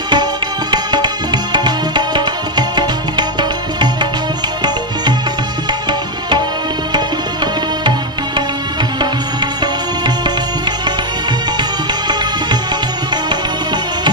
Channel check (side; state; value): both; normal; correlation 0.04